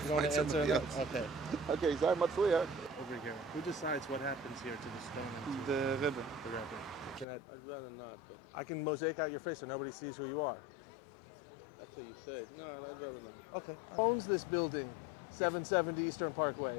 You don't want to answer? Yes. Okay. Okay, sorry, Matsuya. Over here. Who decides what happens here to the stone? And to The Rebbe. the Rebbe? I'd rather not, but I can mosaic out your face so nobody sees who you are. that's what you said. No, I'd rather not. Okay. Who owns this building? 770 Eastern Parkway.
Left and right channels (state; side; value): drops out; right; at 7.2 s